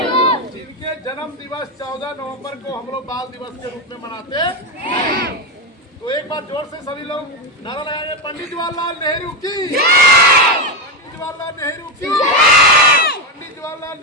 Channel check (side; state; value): both; normal; correlation 0.11